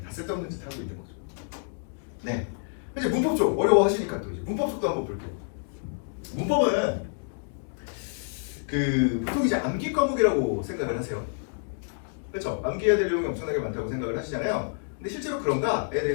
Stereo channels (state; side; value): silent; right; digital silence